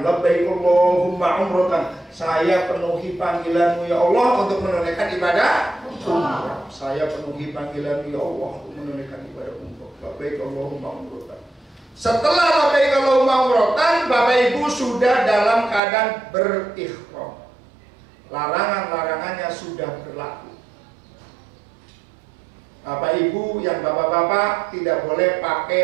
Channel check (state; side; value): drops out; left; at 15.8 s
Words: Labbaik Allahumma umratan. Saya penuhi panggilanmu ya Allah untuk menunaikan ibadah umrah. Saya penuhi panggilanmu ya Allah untuk menunaikan ibadah umrah. Labbaik Allahumma umratan. Setelah labbaik Allahumma umratan, Bapak Ibu sudah dalam keadaan berihram. Larangan-larangannya sudah berlaku. Bapak Ibu yang bapak-bapak tidak boleh